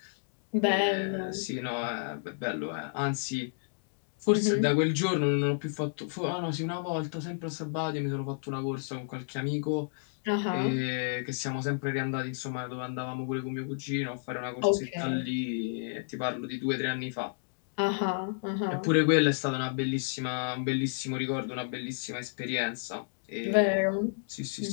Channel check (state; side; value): silent; right; digital silence